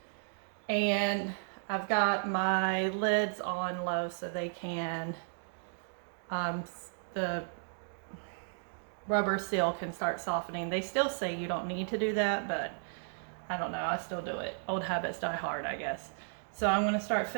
And I've got my lids on low so they can, the rubber seal can start softening. They still say you don't need to do that, but I don't know, I still do it. Old habits die hard, I guess. So I'm going to start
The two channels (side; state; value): left; silent; digital silence